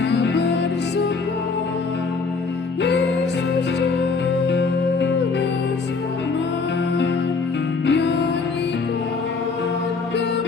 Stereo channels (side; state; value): right; quieter; 4.5 dB